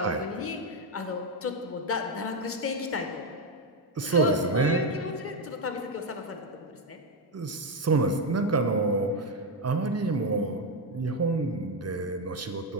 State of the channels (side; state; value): both; normal; correlation 0.07